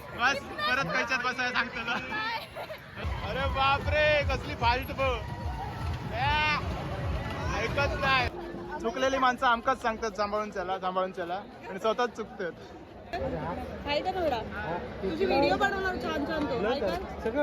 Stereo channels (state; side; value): identical; both; correlation 1.00